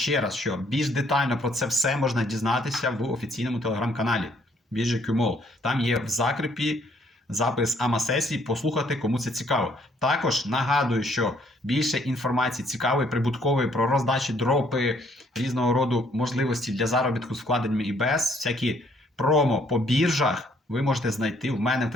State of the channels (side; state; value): both; normal; correlation 0.65